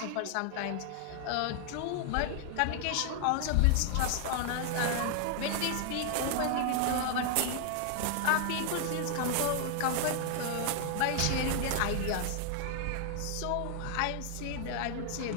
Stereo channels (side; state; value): both; different; correlation 0.00